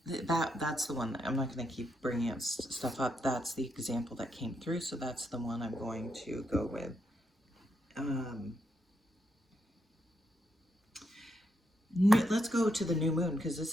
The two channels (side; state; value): both; normal; correlation 0.80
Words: that's the one. I'm not going to keep bringing up stuff up. That's the example that came through, so that's the one I'm going to go with. Let's go to the new moon, because